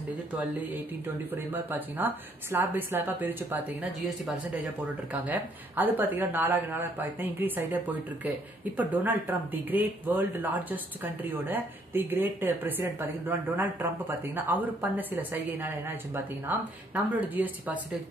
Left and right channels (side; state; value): both; normal; correlation 0.67